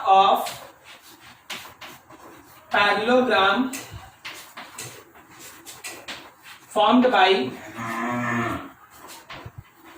of parallelogram formed by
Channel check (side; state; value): both; identical; correlation 1.00